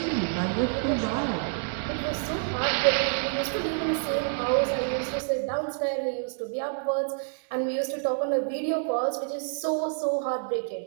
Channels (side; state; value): left; silent; digital silence